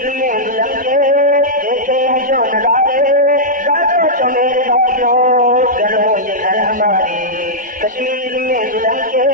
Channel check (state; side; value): normal; both; correlation -0.10